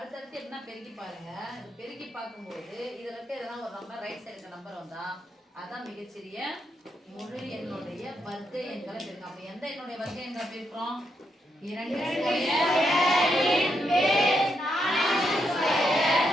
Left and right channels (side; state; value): both; normal; correlation 0.80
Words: என்ன பெருக்கி பாருங்க. பெருக்கி பார்க்கும்போது இதுல இருக்க எதனா ஒரு நம்பர் ரைட் சைடு நம்பர் வந்தா அதான் மிகச்சிறிய முழு எண்ணுடைய வர்க்க எண்களை பெருக்கும். அப்ப எந்த எண்ணுடைய வர்க்க எண்களை பெருக்கிறோம்? 2